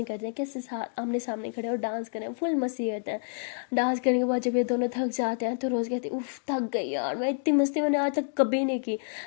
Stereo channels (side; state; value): right; silent; digital silence